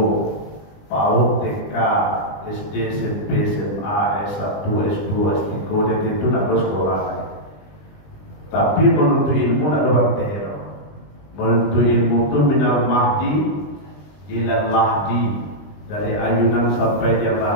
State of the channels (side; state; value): right; late; 20 ms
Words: PAUD, TK, SD, SMP, SMA, S1, S2, S3, dan itu nak ada sekolah. Tapi menuntut ilmu nak ada bertino. Menuntut ilmu itu minal mahdi ila lahdi, dari ayunan sampai dia